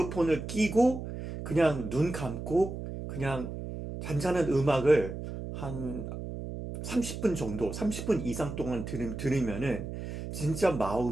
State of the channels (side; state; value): right; noise; hum, 7 dB below the sound